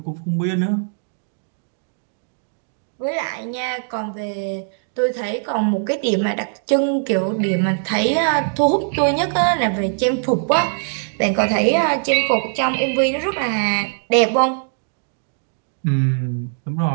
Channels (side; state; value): left; silent; 65 dB below the other